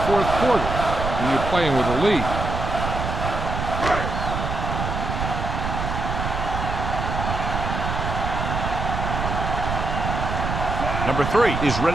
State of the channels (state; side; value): noise; right; rumble, 3 dB below the sound